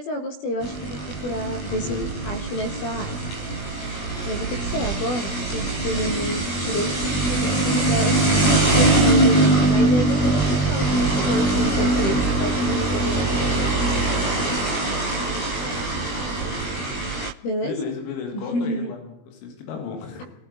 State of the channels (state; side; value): late; right; 20 ms